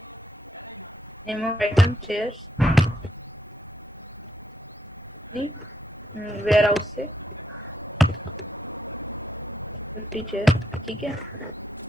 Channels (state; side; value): normal; both; correlation 0.78